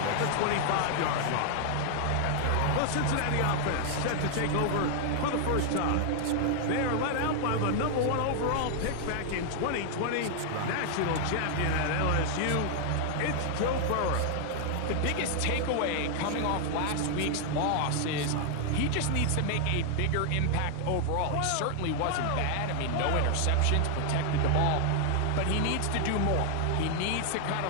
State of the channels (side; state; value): both; different; correlation 0.00